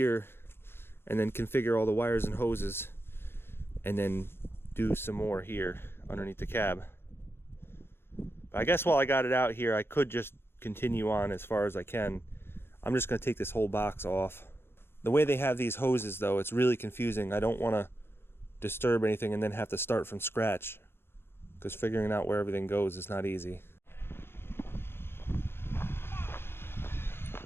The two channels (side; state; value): right; late; 0.11 ms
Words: and then configure all the wires and hoses and then do some more here underneath the cab. But I guess while I got it out here, I could just continue on as far as I can. I'm just gonna take this whole box off. The way they have these hoses though, it's really confusing. I don't wanna disturb anything and then have to start from scratch, because figuring out where everything goes is not easy.